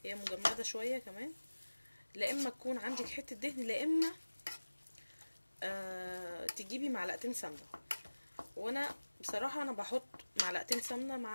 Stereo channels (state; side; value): inverted; both; correlation -1.00